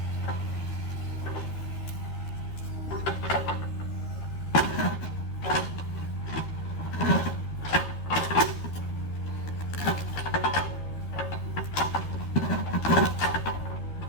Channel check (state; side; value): late; right; 12 ms